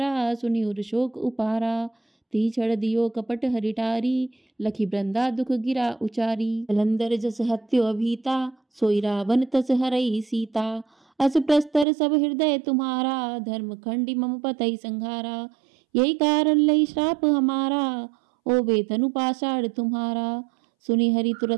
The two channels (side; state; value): left; drops out; at 11.9 s